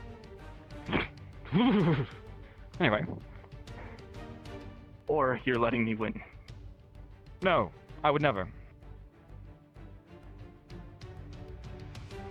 Anyway. Or you're letting me win. No, I would never.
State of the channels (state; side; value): identical; both; correlation 1.00